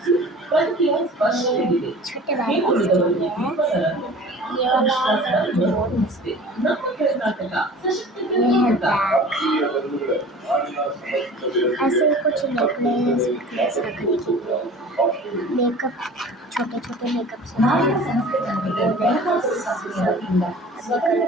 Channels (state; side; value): normal; both; correlation 0.42